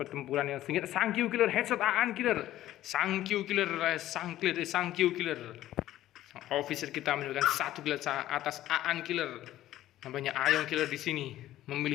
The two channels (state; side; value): quieter; right; 13.9 dB